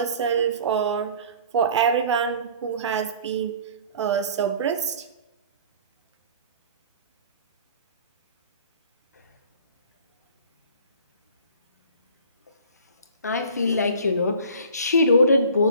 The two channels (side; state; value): both; inverted; correlation -0.46